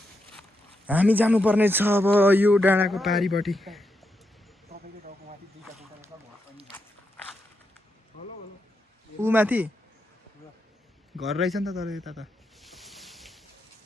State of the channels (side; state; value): both; normal; correlation 0.84